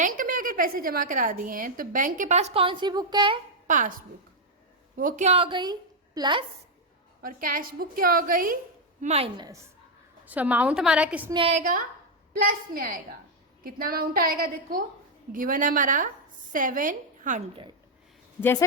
में अगर पैसे जमा करा दिए हैं तो बैंक के पास कौन सी बुक है? पासबुक। वो क्या हो गई? प्लस, और कैश बुक क्या हो गई? माइनस। सो अमाउंट हमारा किस में आएगा? प्लस में आएगा। कितना अमाउंट आएगा? देखो गिवन है हमारा 700। जैसे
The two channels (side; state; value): both; normal; correlation 0.00